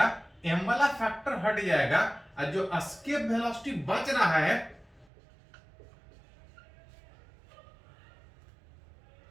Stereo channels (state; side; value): drops out; left; at 5.1 s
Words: m वाला फैक्टर हट जाएगा, और जो एस्केप वेलोसिटी बच रहा है